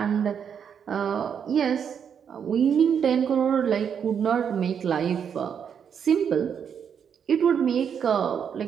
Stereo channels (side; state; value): left; quieter; 7.6 dB